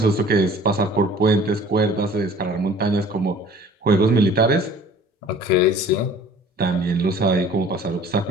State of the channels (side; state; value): both; normal; correlation 0.49